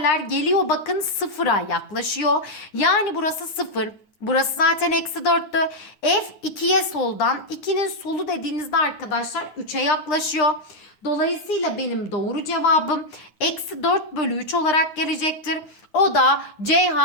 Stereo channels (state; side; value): late; right; 9.8 ms